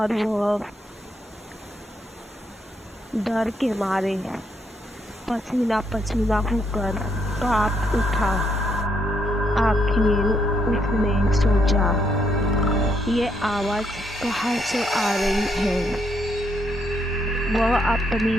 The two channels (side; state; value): both; normal; correlation 0.75